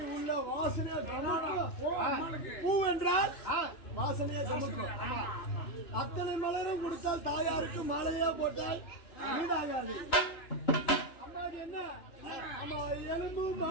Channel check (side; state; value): right; late; 2.9 ms